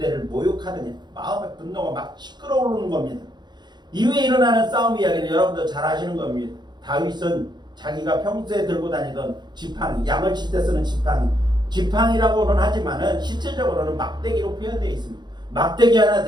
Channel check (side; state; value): left; late; 0.21 ms